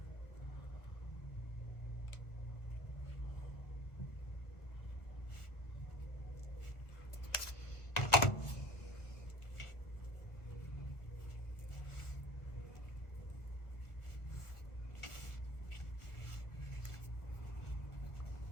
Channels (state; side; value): late; right; 1.4 ms